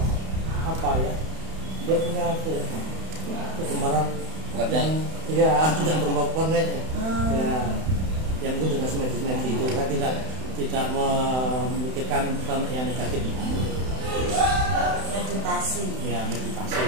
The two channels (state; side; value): late; left; 31 ms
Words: apa ya? Dia punya kegemaran yang ya tidak berbau warna. Ya yang mungkin dengan semedi itu saya tidak memikirkan tentang yang negatif. Meditasi. Ya meditasi.